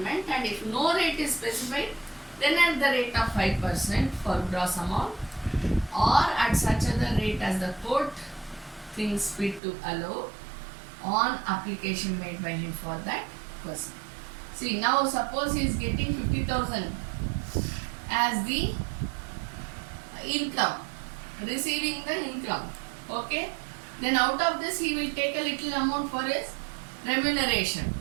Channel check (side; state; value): left; drops out; at 9.6 s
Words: and if no rate is specified, then at the rate of 5% for gross amount, or at such other rate as the court thinks fit to allow on application made by him for that person. See, now suppose he is getting 50,000 as the income, receiving the income. Okay, then out of this he will take a little amount for his remuneration,